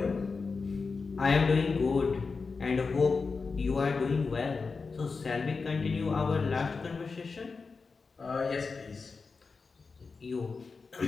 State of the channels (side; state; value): right; quieter; 4.6 dB